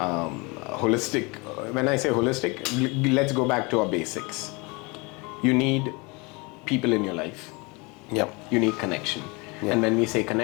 When I say holistic, let's go back to our basics. You need people in your life. Yep. You need connection. Yep. And when we say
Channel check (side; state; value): right; quieter; 27.8 dB